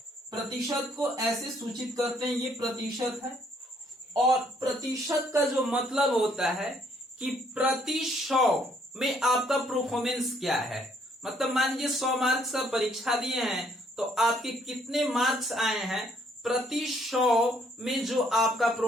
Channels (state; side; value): normal; both; correlation 0.67